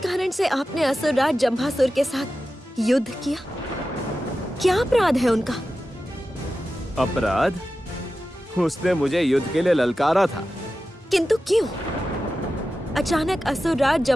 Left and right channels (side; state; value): both; normal; correlation 0.93